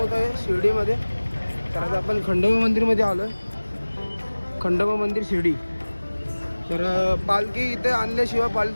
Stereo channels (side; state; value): both; inverted; correlation -1.00